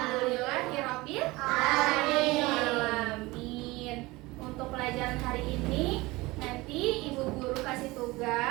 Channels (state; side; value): quieter; left; 21.4 dB